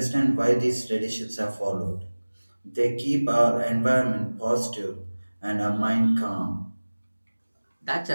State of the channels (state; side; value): inverted; both; correlation -1.00